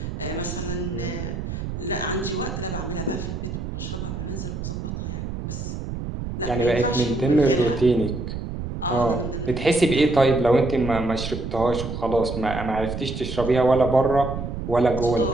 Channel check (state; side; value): noise; right; rumble, 6 dB below the sound